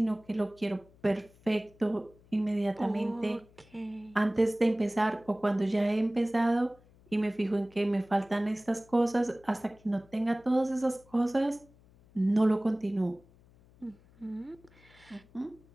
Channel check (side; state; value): left; noise; hum, 28 dB below the sound